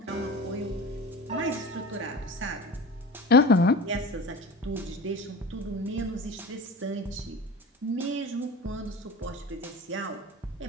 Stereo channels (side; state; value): both; normal; correlation 0.34